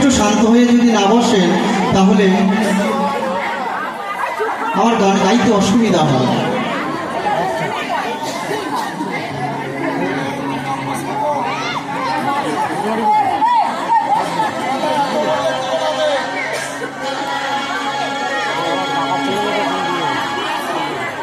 শান্ত হয়ে যদি না বসেন তাহলে আমার গান গাইতে অসুবিধা হয়।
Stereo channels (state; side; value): identical; both; correlation 1.00